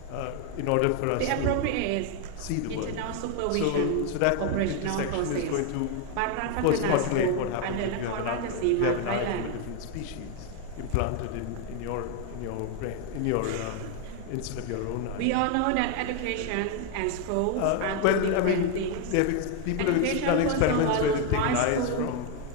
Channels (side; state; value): both; different; correlation 0.01